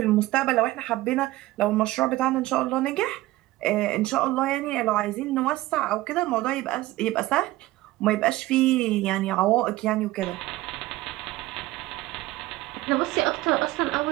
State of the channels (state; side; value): quieter; left; 17.6 dB